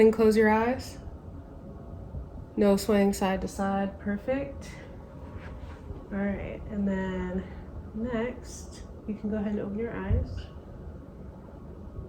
close your eyes. No swaying side to side. Perfect. All right, and then next, you can go ahead and open your eyes.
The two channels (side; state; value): both; identical; correlation 1.00